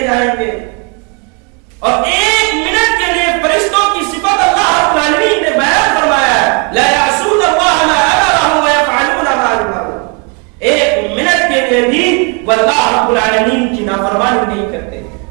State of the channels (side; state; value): left; quieter; 34.8 dB